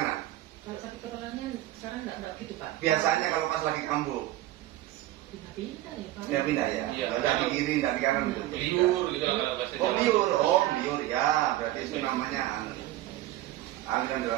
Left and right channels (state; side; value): quieter; left; 15.2 dB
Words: Kalau sakit kepalanya sekarang enggak gitu Pak. Biasanya kalau pas lagi kambuh, Pindah-pindah ya Pak. ya pindah ya. Iya. Nggak di kiri, nggak di kanan gitu. Liur gitu lah kalau bahasa Jawa. Liur ya. Berarti itu namanya aliran